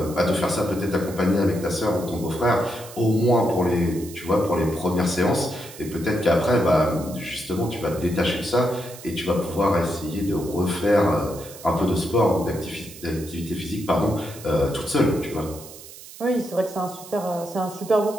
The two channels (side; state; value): right; noise; hiss, 16 dB below the sound